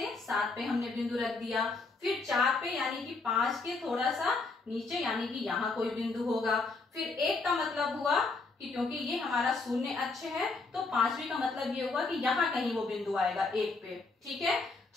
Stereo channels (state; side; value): quieter; right; 3.9 dB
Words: 7 पे हमने बिंदु रख दिया। फिर 4 पे यानी कि 5 के थोड़ा सा नीचे यानी कि यहाँ कोई बिंदु होगा। फिर 1 का मतलब हुआ कि क्योंकि ये हमारा शून्य अक्ष है तो 5वीं का मतलब ये हुआ कि यहाँ कहीं वो बिंदु आएगा 1 पे। ठीक है,